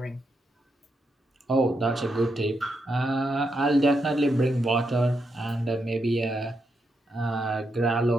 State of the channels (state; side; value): normal; both; correlation 0.82